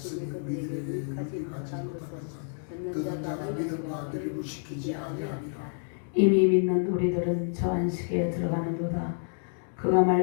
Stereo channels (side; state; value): right; silent; digital silence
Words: 우리에게 가지 못한 것은 듣는 자가 믿음과 결부시키지 아니하리라. 이미 믿는 우리들은 저 안식에 들어가는도다. 그가